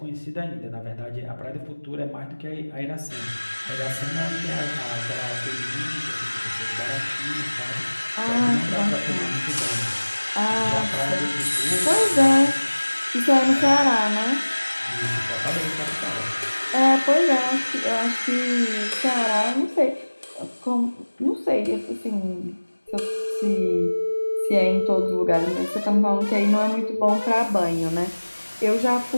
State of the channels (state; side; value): inverted; both; correlation -1.00